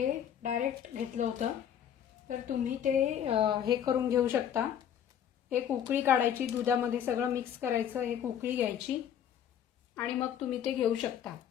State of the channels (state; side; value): quieter; right; 9.4 dB